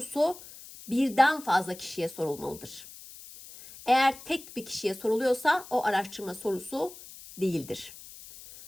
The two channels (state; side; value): noise; left; hiss, 17 dB below the sound